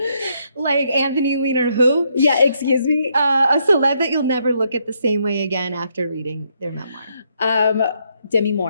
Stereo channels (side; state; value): both; inverted; correlation -0.75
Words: Like Anthony Weiner, who? Yeah, excuse me? A celeb that you'll never look at the same way again after reading their memoir. Demi